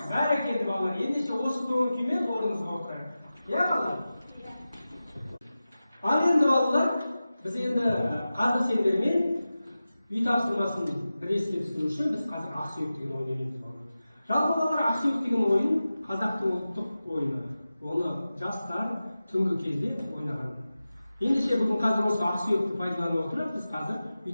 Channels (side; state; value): both; inverted; correlation -0.94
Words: Barakalla bolalar. Endişe o'sib kimen o'rnimizga o'tirib. Ya bolalar. Ana endi bolalar biz endi qadr sendirmen uy topshirmasini bir esga tushirish uchun biz hozir aqsuyuq degan o'ynaymiz. Жалпы bolalar aqsuyuq degan o'yin Qozoqning ultiq o'yini. Оны жастар түнгі кезде ойнаған. Ендеше бүгін қазір осы ақсүйекті пайдаланып отырып, біз қазір үй